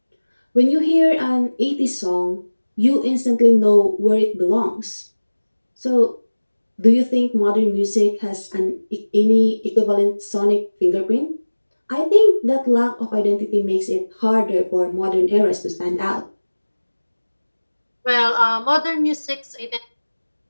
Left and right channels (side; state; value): both; inverted; correlation -1.00